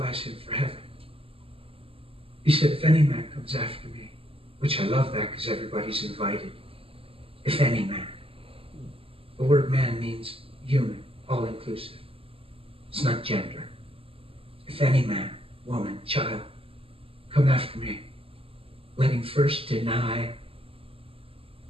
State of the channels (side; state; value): left; late; 0.27 ms